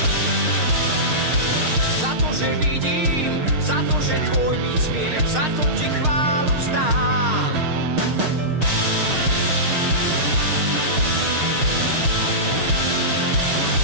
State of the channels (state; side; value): late; left; 6.5 ms